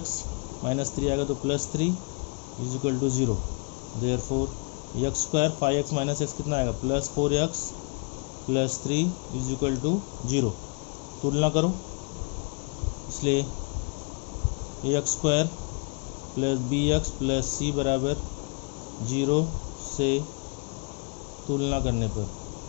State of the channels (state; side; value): quieter; right; 32.7 dB